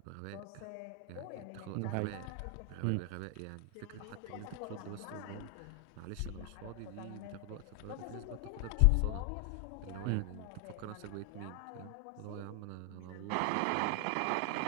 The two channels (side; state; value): both; different; correlation 0.00